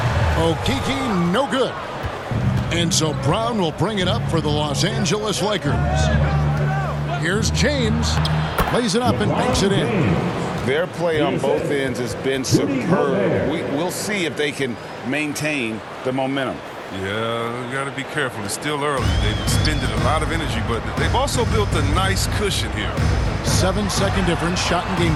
Okeke, no good. And so Brown will bring it up for the Los Angeles Lakers. Here's James. Lays it up and banks it in. Their play on both ends has been superb. We'll see if they can maintain the momentum. Yeah, you got to be careful. It's still early. They've expended a lot of energy, but they've also built a nice cushion here. 7-second difference, shot and game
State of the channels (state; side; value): identical; both; correlation 1.00